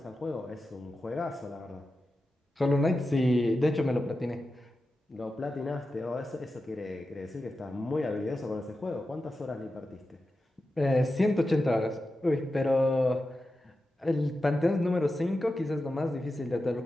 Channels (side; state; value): both; normal; correlation 0.91